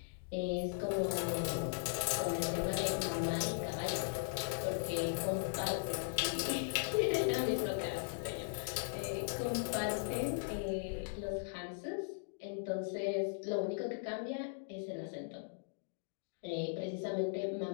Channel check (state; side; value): silent; right; digital silence